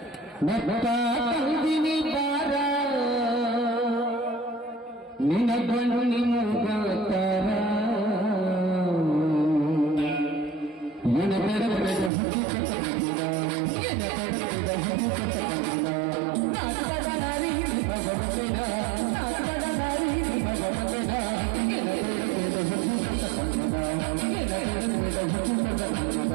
ಬೆಟ್ಟ ತಂದಿನಿ ಬಾರ ನಿನ್ನ ಗಂಡು ನಿಮ್ಮ ಗಾತಾರ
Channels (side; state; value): left; drops out; at 12.1 s